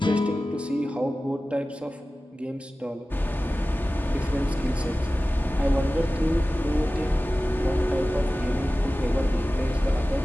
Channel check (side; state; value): both; normal; correlation 0.96